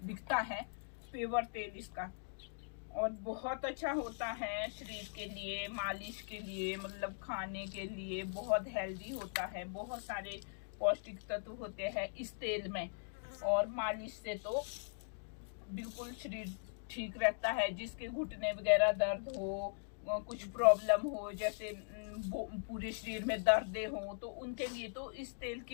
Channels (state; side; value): silent; right; digital silence